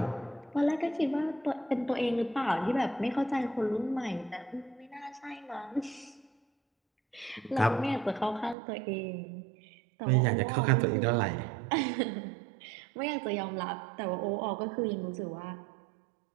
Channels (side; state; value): left; drops out; at 8.6 s